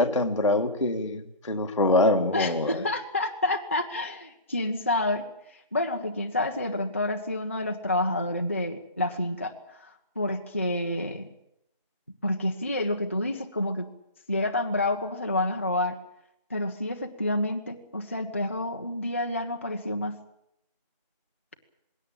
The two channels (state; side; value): inverted; both; correlation -0.35